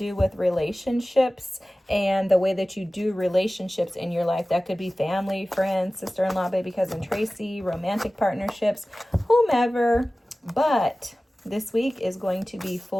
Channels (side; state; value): both; normal; correlation 0.97